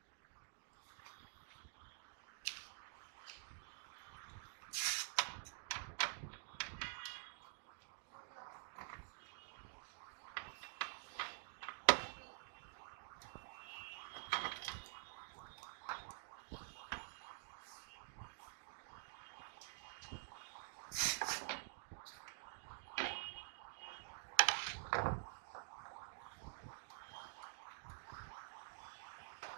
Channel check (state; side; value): silent; left; digital silence